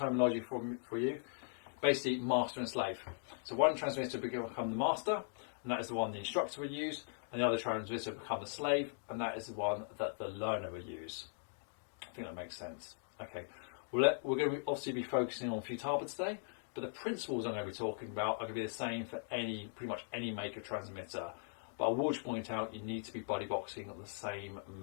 for you. Basically, master and slave. So one transmitter will become the master, and that is the one the instructor will use, and the other transmitter will become the slave, and that is the one that the learner will use. I think that makes sense. Okay, we're going to obviously be focusing on Futaba today, but the principles I'm going to be talking about are going to be the same for pretty much any make of transmitter. But I will just point out you need to be buddy boxing at the same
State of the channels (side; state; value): right; silent; digital silence